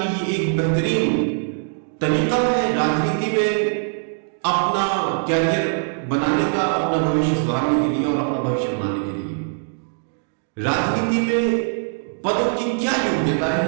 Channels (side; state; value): left; silent; digital silence